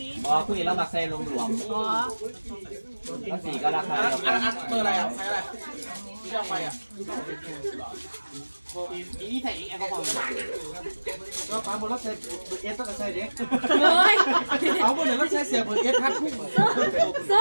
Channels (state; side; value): inverted; both; correlation -1.00